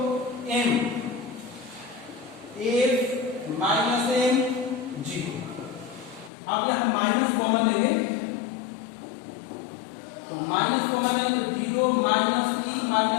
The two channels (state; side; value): drops out; right; at 6.3 s